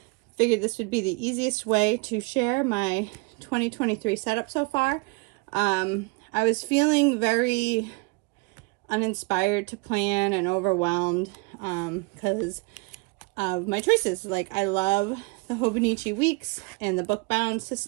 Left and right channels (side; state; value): left; quieter; 28.6 dB